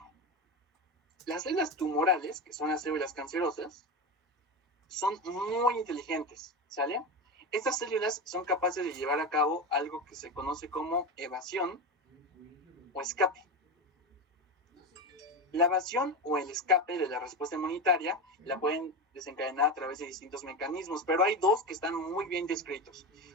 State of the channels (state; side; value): normal; both; correlation 0.19